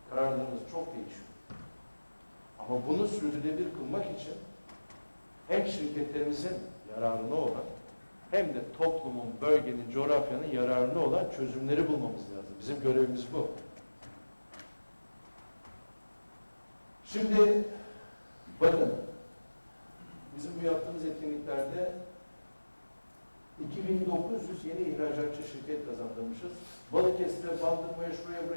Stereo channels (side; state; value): both; inverted; correlation -1.00